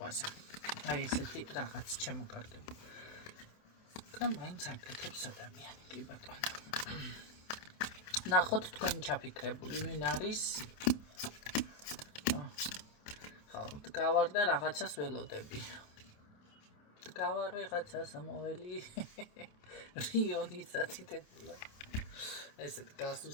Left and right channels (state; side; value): late; right; 27 ms